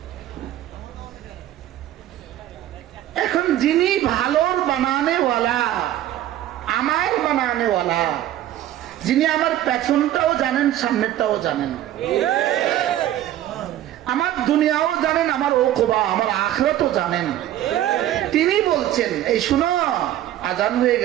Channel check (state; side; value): quieter; left; 12.8 dB